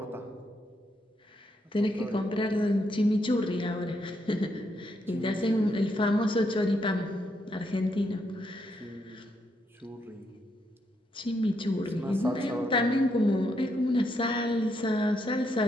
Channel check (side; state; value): both; normal; correlation 0.78